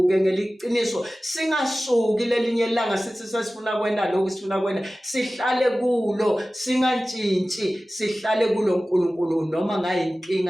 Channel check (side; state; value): both; normal; correlation 0.96